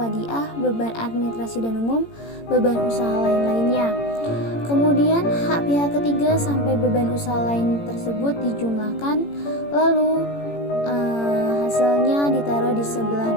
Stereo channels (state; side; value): late; right; 18 ms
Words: beban administrasi dan umum, beban usaha lain-lainnya. Kemudian hak pihak ketiga sampai beban usaha lain tersebut dijumlahkan, lalu hasilnya ditaruh di sebelah